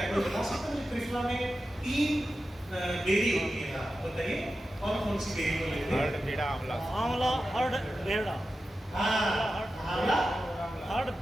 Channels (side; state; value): both; normal; correlation 0.92